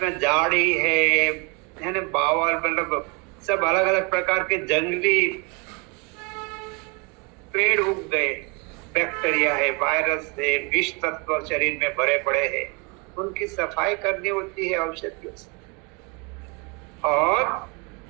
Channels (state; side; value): quieter; left; 30.9 dB